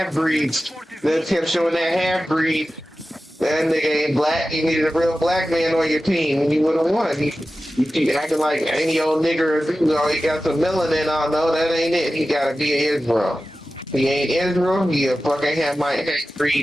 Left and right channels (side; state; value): both; normal; correlation 0.94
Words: They kept showing that half-breed. That nigga ain't black, you needed a real black man on your team, and you would've won. You keep acting like any old nigger, you know, he got some melanin on, no, that ain't it. He gotta be Israel. He ain't Israel, he a fucking